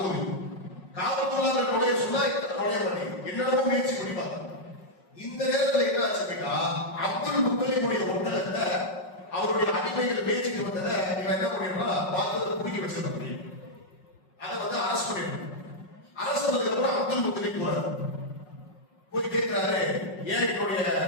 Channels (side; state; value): right; late; 5.4 ms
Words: காபத்துல்லாஹ்ல நுழைய சொன்னா நுழைய மாட்டேங்குது. என்னென்னமோ முயற்சி பண்ணிப்பாங்க. இந்த நேரத்தில் என்ன ஆச்சு அப்படின்னா, அப்துல் முத்தலிபுடைய ஒட்டகத்தை அவருடைய அடிமைகள் பேச்சுட்டு வந்ததை இவன் என்ன பண்ணிடுறா, பார்த்ததை குடிக்க வச்சிருக்க முடியும். அதை வந்து அரசு பண்ணிடணும். அரசு வந்ததுக்கு அப்புறம் அப்துல் முத்தலிப் போறாரு. போய் கேட்கிறாரு, ஏன் என்னுடைய